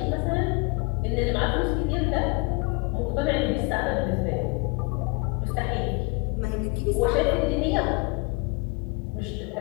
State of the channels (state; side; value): quieter; right; 28.3 dB